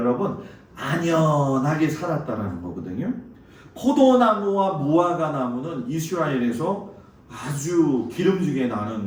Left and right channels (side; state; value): both; identical; correlation 1.00